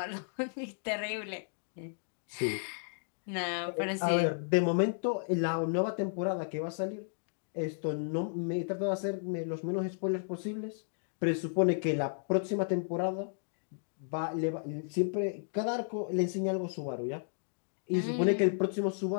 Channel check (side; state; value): right; silent; digital silence